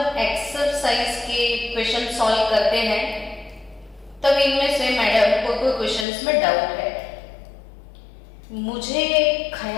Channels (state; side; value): drops out; right; at 6.1 s